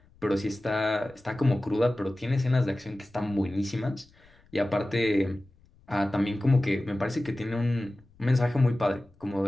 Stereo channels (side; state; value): left; noise; rumble, 29 dB below the sound